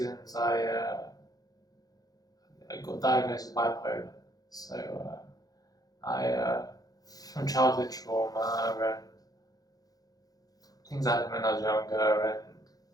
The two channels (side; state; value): right; late; 0.18 ms